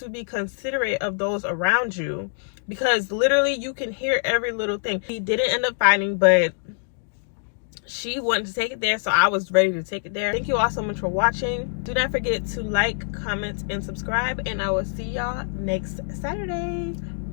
be considerate of those around you, because literally you can hear every little thing. He didn't end up fighting, but she wanted to take it there, so I was ready to take it there. Thank you all so much for watching. Do not forget to like, comment, and subscribe, and I will see y'all next Saturday.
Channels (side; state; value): right; silent; digital silence